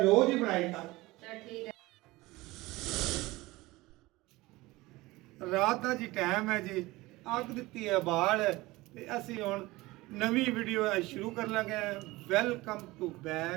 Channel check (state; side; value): quieter; left; 20.2 dB